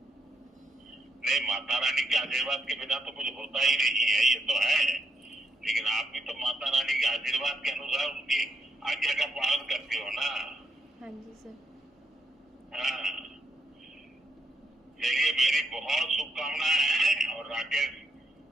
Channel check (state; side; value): normal; both; correlation 0.77